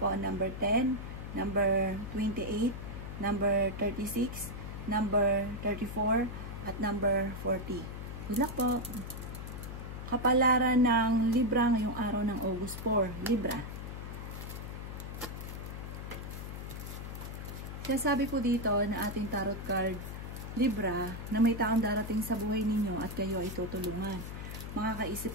ang number 10, number 28, number 36, number 34, at number 40. Good luck po! Kapalaran ng Libra ngayong araw ng August 4. Libra. Kaya sabi po dito na ating tarot card, Libra, na may taong darating sa buhay ninyo at kayo ay tutulungan.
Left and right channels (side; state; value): left; noise; hum, 8 dB below the sound